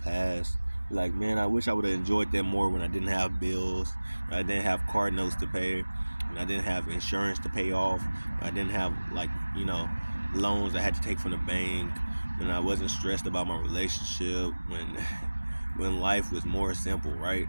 like, man, I wish I would have enjoyed that more when I didn't have bills, when I didn't have car notes to pay, when I didn't have insurance to pay off, when I didn't have, like, loans I had to take from the bank, when I wasn't stressed about my relationship, when life was more simple, right?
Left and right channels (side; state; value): both; inverted; correlation -1.00